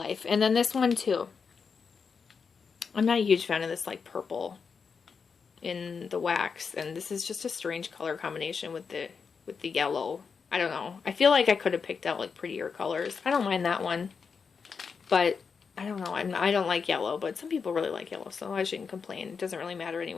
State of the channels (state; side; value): quieter; right; 5.7 dB